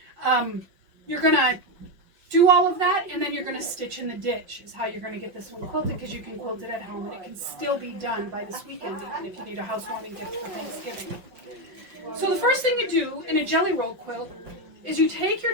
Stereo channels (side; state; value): left; late; 5.6 ms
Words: You're going to do all of that, and then you're going to stitch in the ditch is how you're going to get this one quilted, because you can quilt it at home, and it can still be done by this weekend, even if you need a housewarming gift for Thanksgiving. So the first thing you do in a jelly roll quilt is you take your